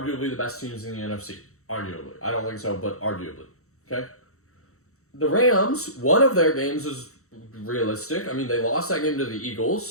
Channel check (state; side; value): late; right; 0.64 ms